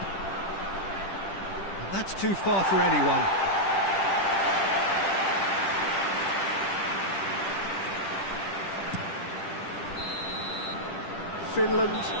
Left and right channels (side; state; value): right; late; 10 ms